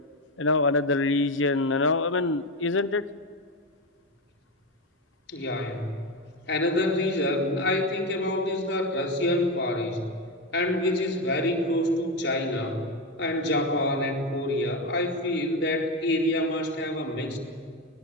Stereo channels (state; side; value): normal; both; correlation 0.14